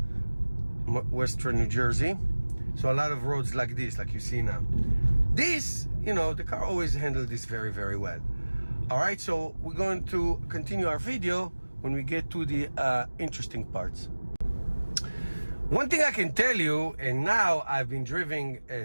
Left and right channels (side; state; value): both; inverted; correlation -1.00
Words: Western New Jersey. So a lot of roads like this, like you see now. This, you know, the car always handled this very, very well. All right, so we're going to continue our video when we get to the interesting parts. One thing I can tell you, and now I've been driving